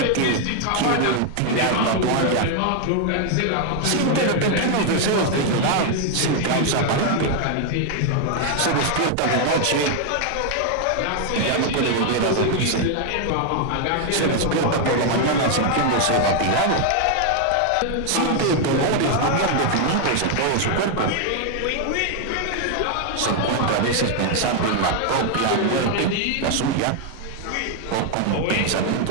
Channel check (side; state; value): both; different; correlation 0.00